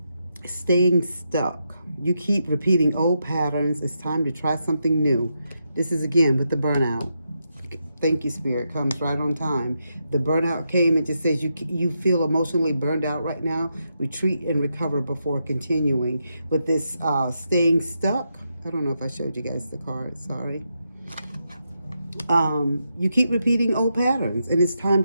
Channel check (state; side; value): inverted; both; correlation -0.83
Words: Staying stuck. You keep repeating old patterns. It's time to try something new. This is again with the burnout. Thank you, Spirit. Comes right on time. The burnout came and just says you feel emotionally burned out right now. Retreat and recover before continuing. With this staying stuck, I don't know if I showed you guys the card. Sorry. You keep repeating old patterns, and it's time